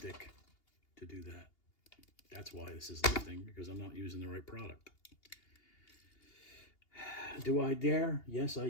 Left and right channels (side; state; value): right; late; 2.8 ms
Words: to do that. That's why this is lifting, because I'm not using the right product. Do I dare? Yes, I